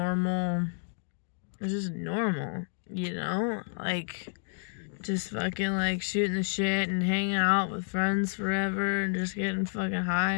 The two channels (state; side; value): silent; right; digital silence